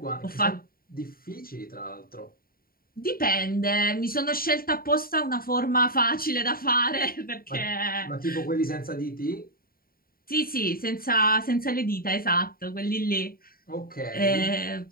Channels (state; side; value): late; right; 0.43 ms